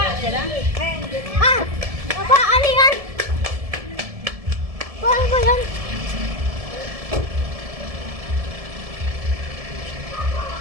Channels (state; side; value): late; left; 1.7 ms